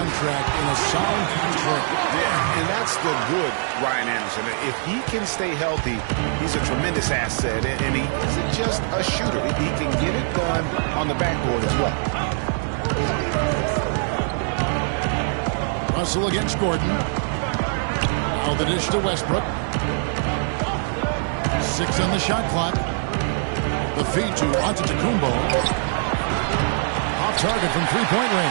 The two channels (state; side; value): silent; left; 63 dB below the other